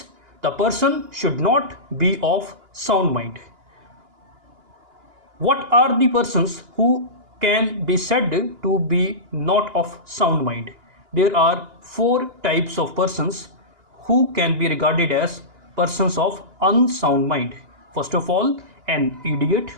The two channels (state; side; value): late; left; 2.9 ms